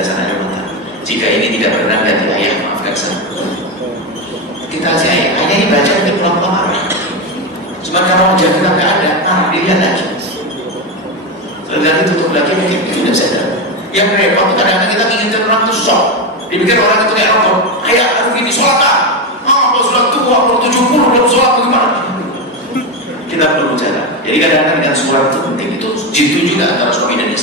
air mata. Jika ini tidak pernah ganti ayah, maafkan saya. Kita aja ayah ini baca itu pelan-pelan marah. Cuma kalau wajah kita nggak ada, dilihat lagi. Setelah tutup lagi mungkin tidak sadar. Yang repot kadang-kadang kita inginkan orang itu shock. Dipikir orang itu kayak rokok. Ayah, aduh ini sholat kan? Kalau sholat tua, kalau 70, belum sholat bagaimana? Kita perlu bicara. Jadi kadang-kadang dengan sholat itu penting. Itu jitu juga antara suami dan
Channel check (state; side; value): normal; both; correlation 0.13